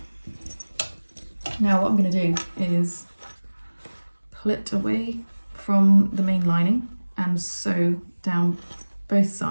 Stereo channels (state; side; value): inverted; both; correlation -1.00